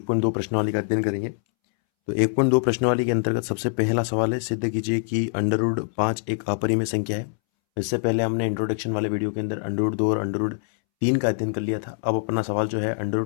प्रश्नावली का अध्ययन करेंगे। तो 1.2 प्रश्नावली के अंतर्गत सबसे पहला सवाल है, सिद्ध कीजिए कि अंडर रूट 5 एक अपरिमेय संख्या है। इससे पहले हमने इंट्रोडक्शन वाले वीडियो के अंदर अंडर रूट 2 और अंडर रूट 3 का अध्ययन कर लिया था। अब अपना सवाल जो है अंडर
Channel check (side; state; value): right; silent; 62 dB below the other